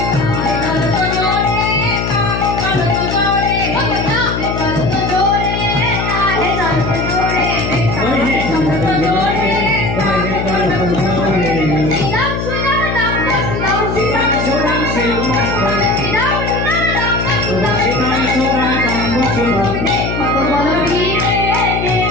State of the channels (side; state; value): left; noise; hum, 3 dB below the sound